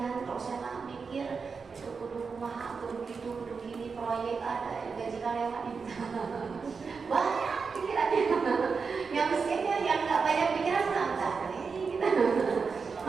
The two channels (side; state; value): left; quieter; 5.2 dB